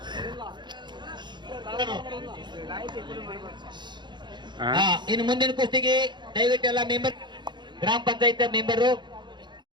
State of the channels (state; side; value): late; left; 0.22 ms